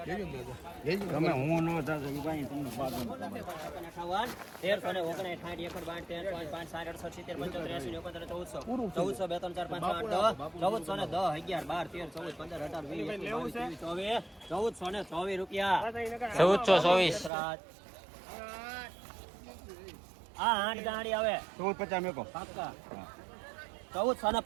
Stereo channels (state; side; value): drops out; left; at 17.3 s